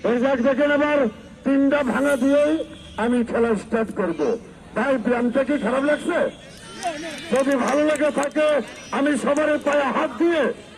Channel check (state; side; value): identical; both; correlation 1.00